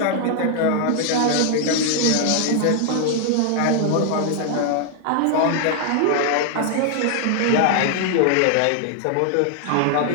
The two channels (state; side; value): different; both; correlation 0.00